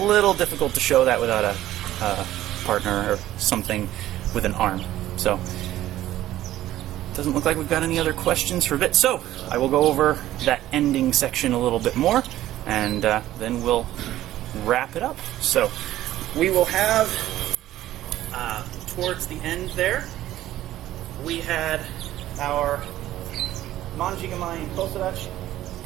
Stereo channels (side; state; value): left; quieter; 14.1 dB